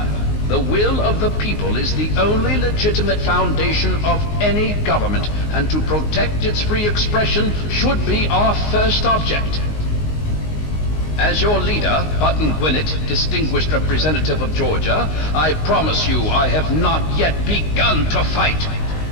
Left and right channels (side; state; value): right; late; 19 ms